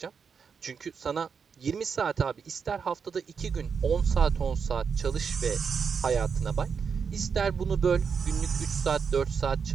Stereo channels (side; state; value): left; quieter; 6.2 dB